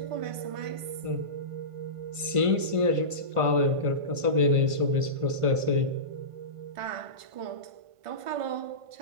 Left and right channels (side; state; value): left; late; 1.5 ms